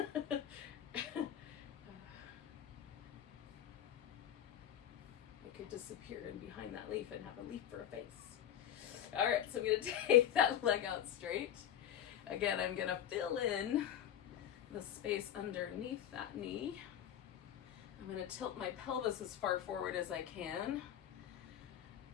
could disappear in behind that leaf and have a leaf for a face. All right, so I'm gonna take that leg out straight. Again, I'm gonna fill in the space underneath that knee. I'm gonna tilt my pelvis as far forward as I can.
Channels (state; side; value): quieter; right; 10.3 dB